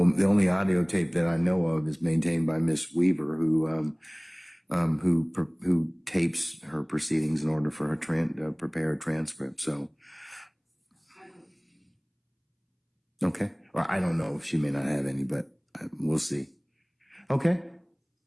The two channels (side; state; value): both; identical; correlation 1.00